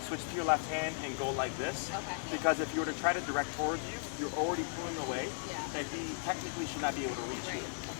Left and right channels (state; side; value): silent; right; digital silence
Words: to your left hand and go like this. Okay. Because if you were to try to direct towards you, you're already pulling away, Yeah. and he technically should not be able to reach you.